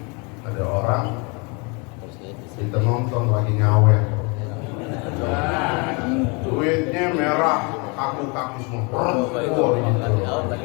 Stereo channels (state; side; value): quieter; right; 31.2 dB